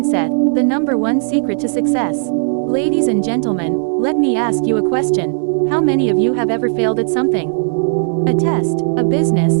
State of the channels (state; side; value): silent; left; digital silence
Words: the number one secret to success. Ladies and gentlemen, let me ask you a question. How many of you have ever failed at something? A test, a business,